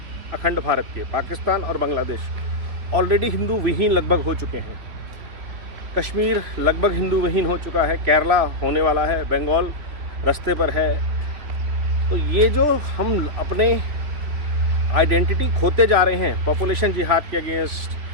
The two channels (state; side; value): late; left; 3.3 ms